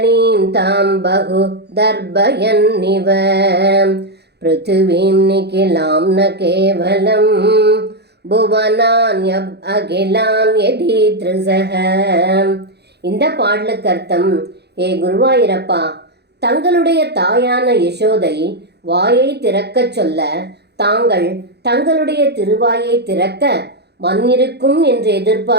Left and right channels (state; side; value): late; left; 0.48 ms